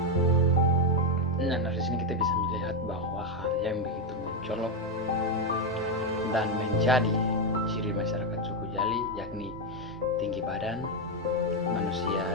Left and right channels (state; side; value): normal; both; correlation 0.05